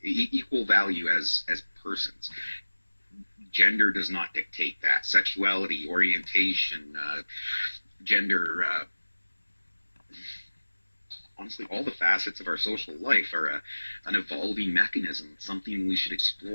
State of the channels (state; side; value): inverted; both; correlation -1.00